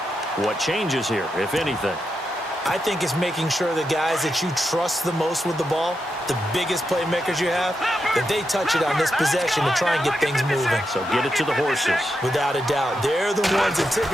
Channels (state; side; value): normal; both; correlation 0.85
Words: What changes here, if anything? I think it's making sure the guys that you trust the most with the ball, the biggest playmakers you have, that they touch it on this possession to try and get things moving. So get it to the horses. Without a doubt. They're the ones that